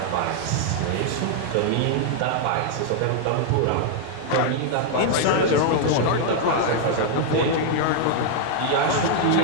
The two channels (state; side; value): different; both; correlation 0.00